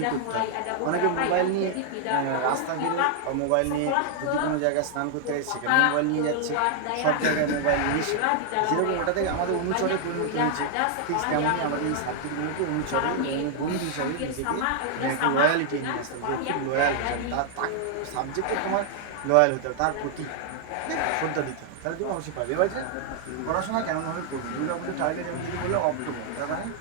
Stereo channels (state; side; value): different; both; correlation 0.00